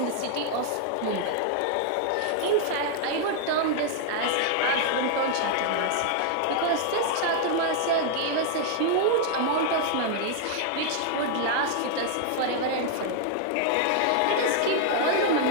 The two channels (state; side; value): different; both; correlation 0.00